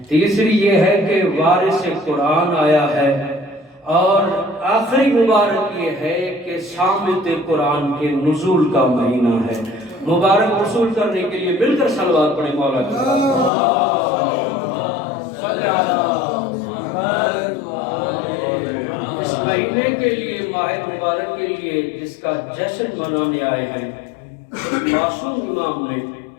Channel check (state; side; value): drops out; right; at 13.5 s